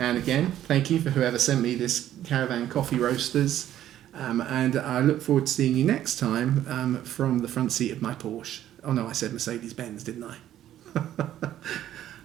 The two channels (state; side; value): quieter; left; 12.0 dB